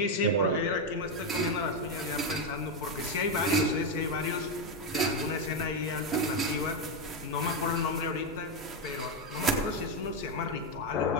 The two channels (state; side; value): normal; both; correlation 0.06